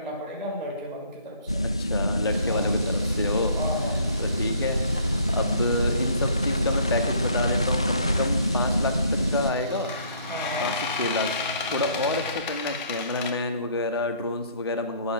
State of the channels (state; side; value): inverted; both; correlation -0.60